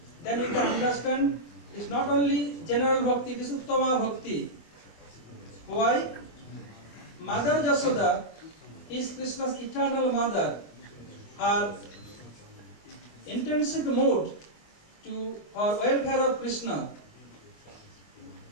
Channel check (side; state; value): right; late; 24 ms